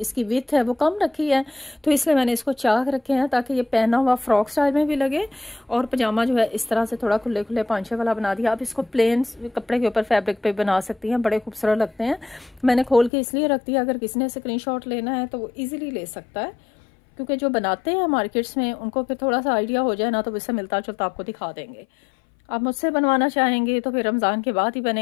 विथ है वो कम रखी है, तो इसलिए मैंने इसको चाक रखे हैं ताकि ये पहना हुआ फ्रॉक स्टाइल में भी लगे। और पजामा जो है इस तरह से थोड़ा खुले खुले पांचे वाला बना दिया। आप इसको प्लेन कपड़े के ऊपर फैब्रिक पे बना सकती हैं, बड़े खूबसूरत लगते हैं। मैंने खोल के इसलिए रख दिया, अगर किसी ने स्क्रीनशॉट लेना है तो वो ईजिली ले सकता है, क्योंकि जो बनाते हैं मार्केट्स में उनको फिर थोड़ा सा आइडिया हो जाए ना, तो इससे मिलता जुलता आपको दिखा देंगे। आप मुझसे बनवाना चाहेंगे तो फिर रमज़ान के बाद ही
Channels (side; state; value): right; drops out; at 13.1 s